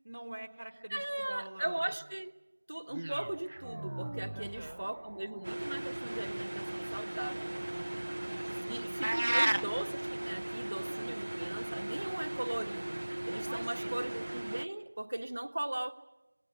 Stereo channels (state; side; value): inverted; both; correlation -1.00